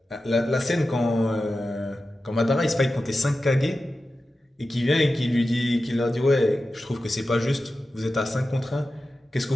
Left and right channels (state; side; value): normal; both; correlation 0.93